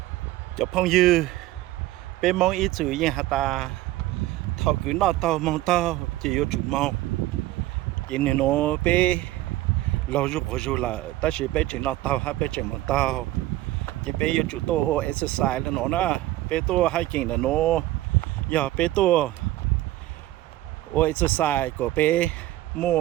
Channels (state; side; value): quieter; left; 16.1 dB